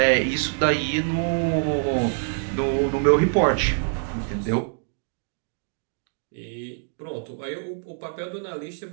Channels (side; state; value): left; silent; digital silence